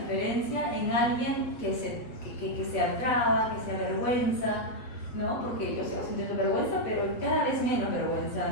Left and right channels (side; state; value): right; late; 7.9 ms